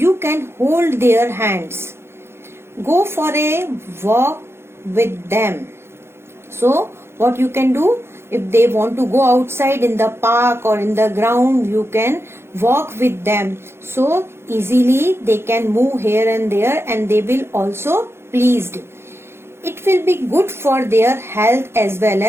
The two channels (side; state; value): left; late; 0.12 ms